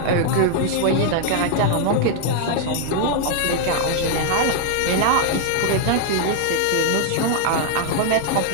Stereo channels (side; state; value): both; different; correlation 0.00